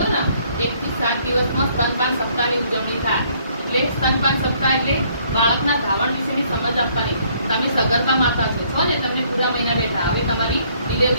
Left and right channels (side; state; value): both; inverted; correlation -0.65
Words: ને, 1 થી 7 દિવસમાં સ્તનપાન સપ્તાહની ઉજવણી થાય. એટલે સ્તનપાન સપ્તાહ એટલે બાળકના ધાવણ વિશેની સમજ આપવાની. તમે સગર્ભા માતા છો ને, તમને પૂરા મહિના બેઠા, હવે તમારી